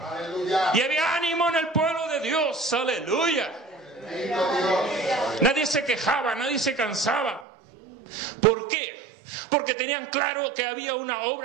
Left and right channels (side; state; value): left; drops out; at 7.5 s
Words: Y había ánimo en el pueblo de Dios, aleluya. Nadie se quejaba, nadie se cansaba. ¿Por qué? Porque tenían claro que había una